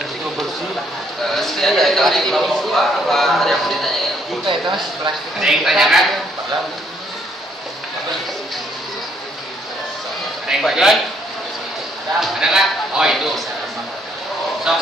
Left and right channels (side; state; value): both; normal; correlation 0.69